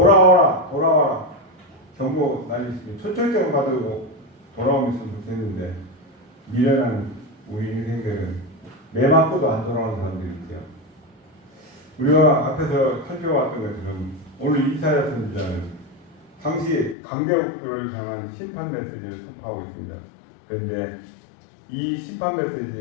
경고 날리시면 초청장을 받으고 돌아오면서 됐는데 미련한 우리 인생들은 매 맞고도 안 돌아오는 사람들이 있죠. 우리가 앞에서 살펴봤던 것처럼 오늘 이사야 선지자는 당시 강대국들을 향한 심판 메시지를 선포하고 있습니다. 그런데 이 심판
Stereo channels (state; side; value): drops out; right; at 16.9 s